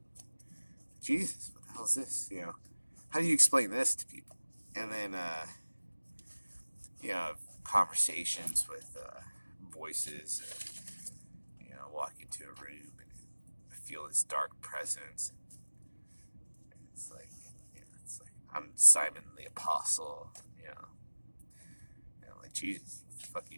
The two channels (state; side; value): inverted; both; correlation -1.00